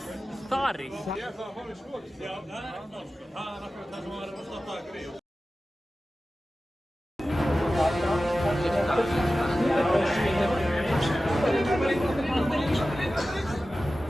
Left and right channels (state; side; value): normal; both; correlation 0.95